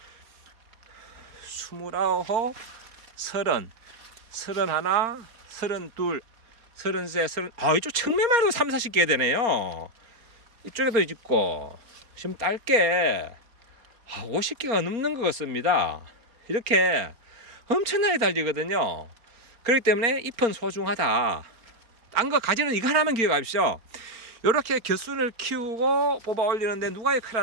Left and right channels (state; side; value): late; left; 4.3 ms